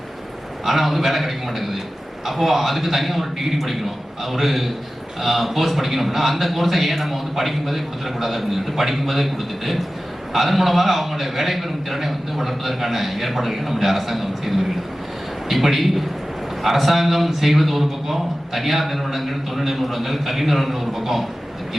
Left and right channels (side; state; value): both; normal; correlation 0.95